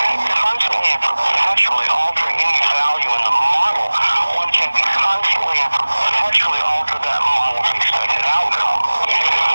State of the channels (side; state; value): both; inverted; correlation -1.00